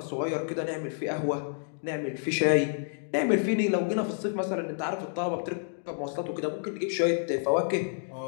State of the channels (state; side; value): silent; right; digital silence